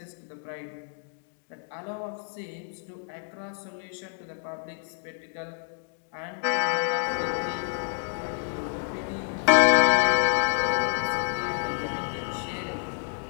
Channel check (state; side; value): silent; right; digital silence